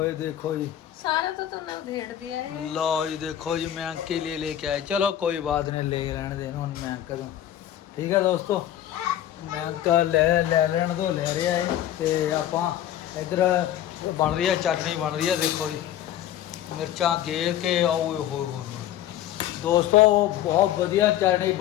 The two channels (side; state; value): right; quieter; 11.8 dB